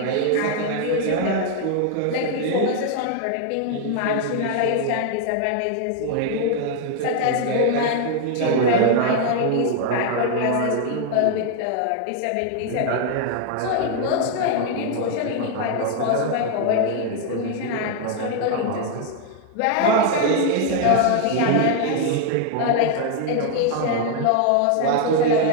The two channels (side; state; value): both; different; correlation 0.00